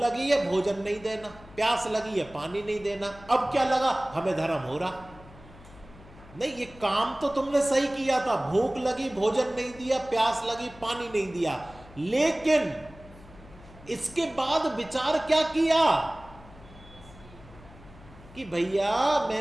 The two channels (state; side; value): noise; left; hum, 21 dB below the sound